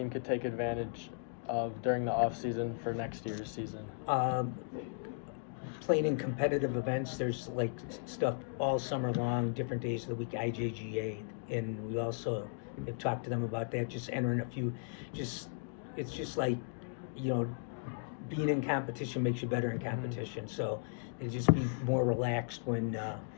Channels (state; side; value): silent; right; digital silence